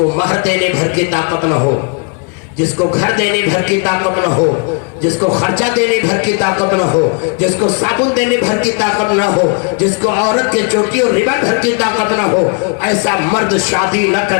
مہر دینے بھر کی طاقت نہ ہو، جس کو گھر دینے بھر کی طاقت نہ ہو، جس کو خرچہ دینے بھر کی طاقت نہ ہو، جس کو صابن دینے بھر کی طاقت نہ ہو، جس کو عورت کے چوٹی اور ربن بھر کی طاقت نہ ہو۔ ایسا مرد شادی نہ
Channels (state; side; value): quieter; right; 37.3 dB